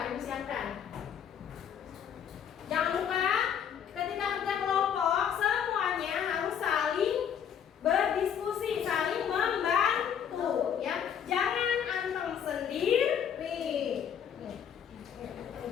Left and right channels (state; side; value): quieter; right; 8.4 dB